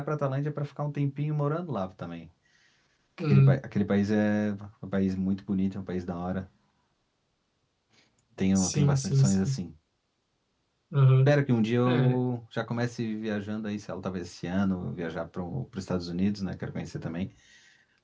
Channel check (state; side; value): identical; both; correlation 1.00